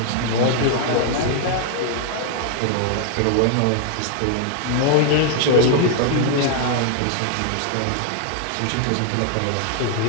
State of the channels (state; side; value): different; both; correlation 0.00